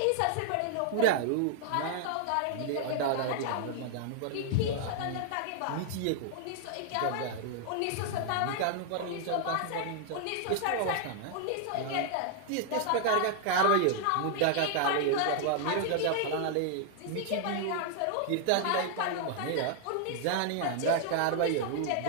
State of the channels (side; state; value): both; different; correlation 0.00